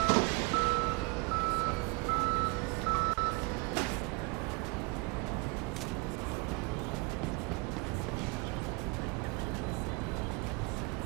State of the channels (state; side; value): quieter; left; 28.2 dB